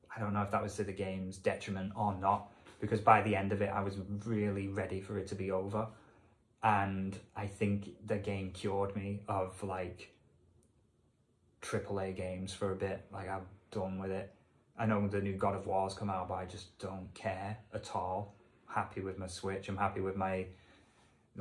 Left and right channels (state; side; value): identical; both; correlation 1.00